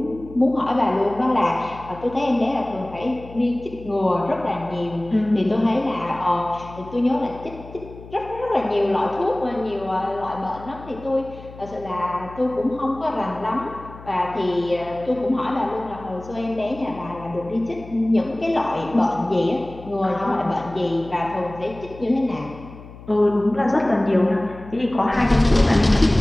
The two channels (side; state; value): left; noise; hum, 17 dB below the sound